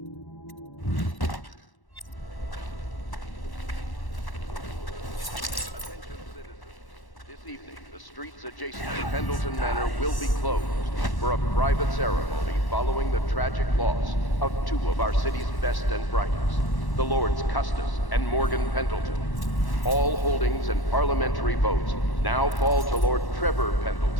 Streets adjacent to Pendleton Manor will be closed for a private ceremony following the tragic loss of two of our city's best and brightest, the Lords Custis and Morgan Pendleton. All holdings and parliamentary votes now fall to Lord Trevor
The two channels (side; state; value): right; late; 1.1 ms